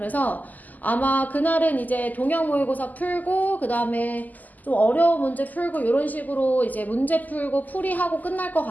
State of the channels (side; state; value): right; late; 0.081 ms